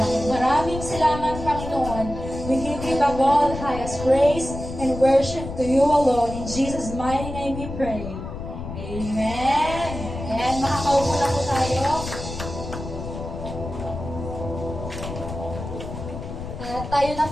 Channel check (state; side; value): noise; left; rumble, 8 dB below the sound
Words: Maraming salamat, Panginoon. We give you the all highest praise and worship to you alone. In Jesus' mighty name we pray. Amen. Ayan, makakaupo na po tayo. Tayo na